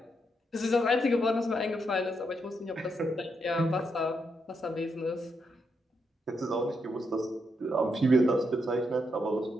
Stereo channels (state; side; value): normal; both; correlation 0.80